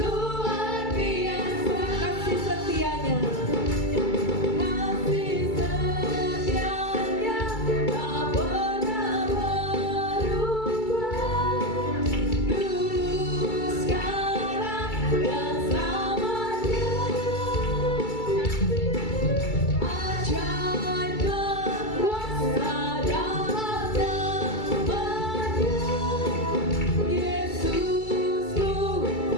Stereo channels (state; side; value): late; right; 2.3 ms